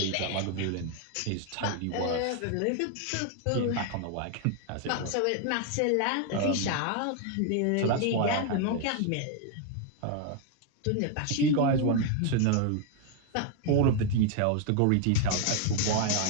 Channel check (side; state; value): both; different; correlation 0.00